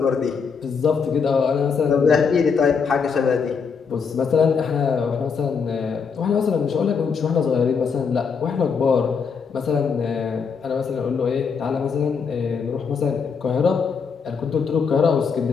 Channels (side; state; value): right; quieter; 5.9 dB